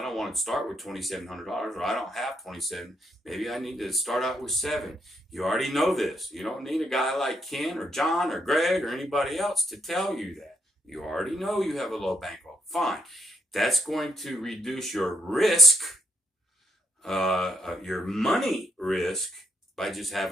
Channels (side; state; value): both; normal; correlation 0.75